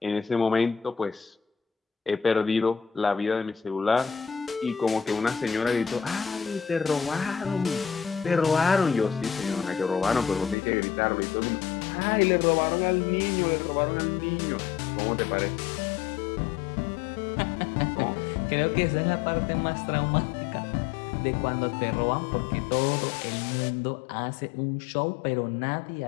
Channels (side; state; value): right; drops out; at 10.6 s